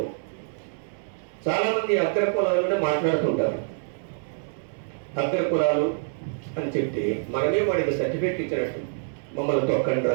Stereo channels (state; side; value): silent; left; 61 dB below the other